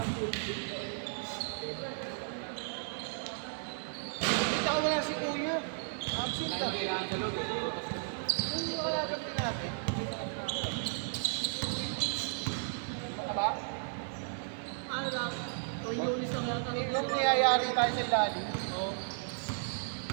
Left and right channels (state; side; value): silent; left; digital silence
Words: Kita ko wala si Kuya. Absent ah. Kailangan sa loob. Yung kalaban din natin. Wala? Ano lang? Ulinis lang yata. Yung niyayari tayo sa ilalim. Ano